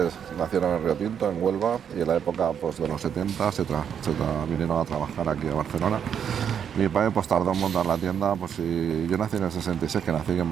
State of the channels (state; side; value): quieter; left; 8.1 dB